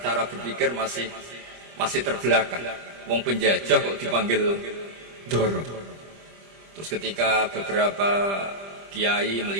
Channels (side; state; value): left; late; 25 ms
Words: berpikir masih terbelakang. Wong penjajah kok dipanggil Doro. Terus ketika beberapa kiai